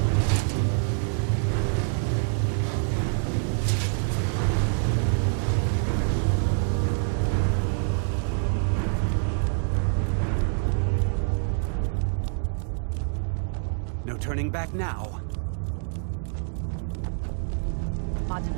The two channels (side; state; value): left; silent; digital silence